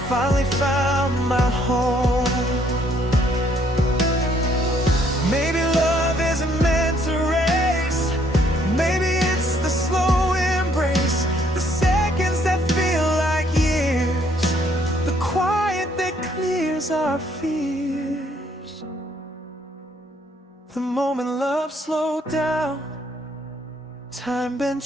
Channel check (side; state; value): both; normal; correlation 0.66